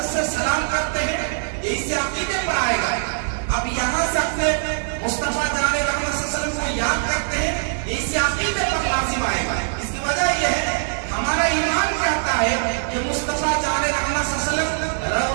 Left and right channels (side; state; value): left; silent; 64 dB below the other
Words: से सलाम करते हैं, ये इसी अकीदे पर आएगा। अब यहाँ से अपने मुस्तफा जाने रहमत सल्लल्लाहु अलैहि वसल्लम को याद करते हैं, ये इसी अकीदे पर लाजिम आएगा। इसकी वजह यह है हमारा ईमान कहता है कि मुस्तफा जाने रहमत सल्लल्लाहु अलैहि वसल्लम